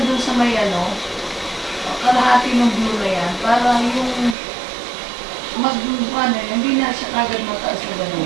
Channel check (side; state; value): left; drops out; at 4.4 s